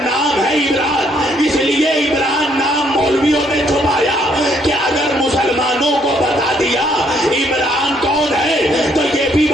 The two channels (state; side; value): normal; both; correlation 0.68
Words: نام ہے عمران. اس لیے عمران نام مولویوں نے چھپایا کہ اگر مسلمانوں کو بتا دیا عمران کون ہے تو یہ بھی